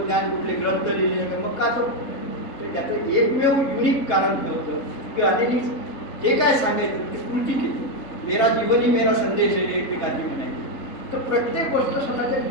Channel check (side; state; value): right; late; 3.8 ms